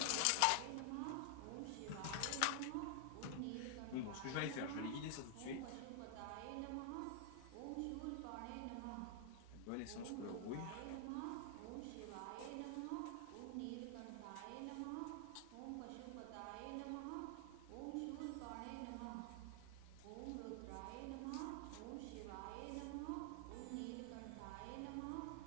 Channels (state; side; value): different; both; correlation 0.00